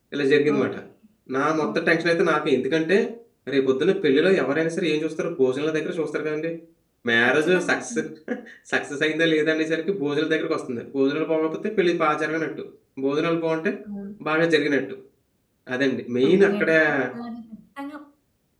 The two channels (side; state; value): both; identical; correlation 1.00